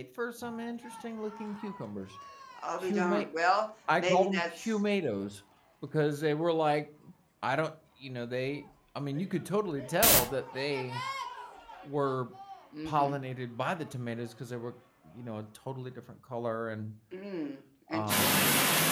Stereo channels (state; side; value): identical; both; correlation 1.00